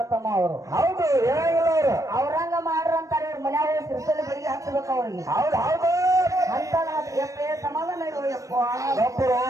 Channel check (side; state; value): left; late; 0.16 ms